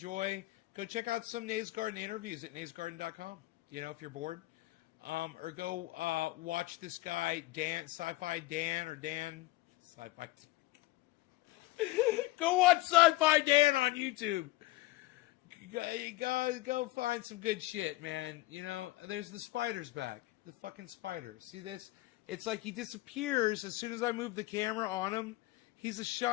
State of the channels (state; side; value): quieter; right; 19.2 dB